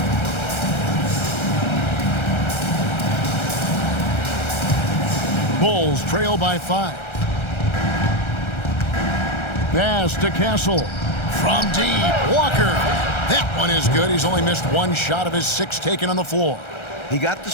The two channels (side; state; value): right; late; 1.3 ms